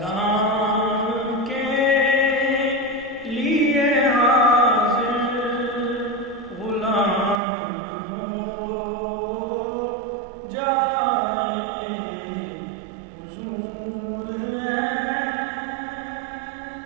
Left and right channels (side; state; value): left; drops out; at 7.4 s